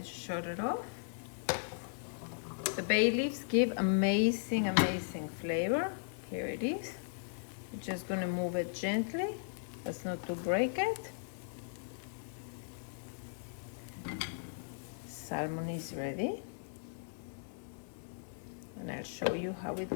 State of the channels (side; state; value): right; silent; digital silence